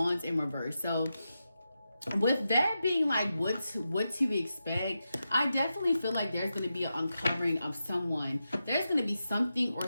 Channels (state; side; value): inverted; both; correlation -0.89